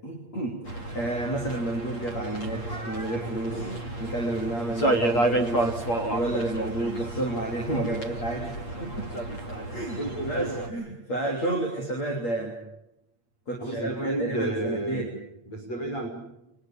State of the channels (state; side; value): late; right; 8.5 ms